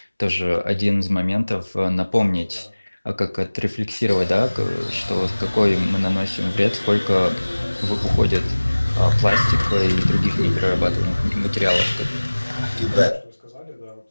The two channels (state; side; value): inverted; both; correlation -1.00